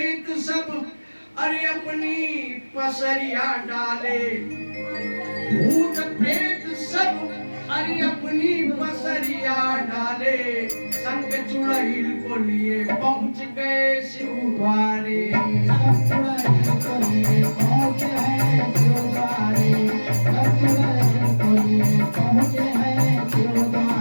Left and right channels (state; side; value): inverted; both; correlation -1.00